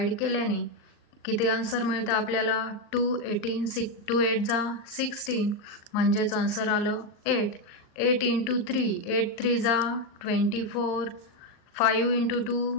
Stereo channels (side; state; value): right; late; 39 ms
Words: केल्याने किती आन्सर मिळतं आपल्याला? 2 8 जा 16, म्हणजेच आन्सर आलं 8। 8 × 3 8 3 जा 24, 5 ×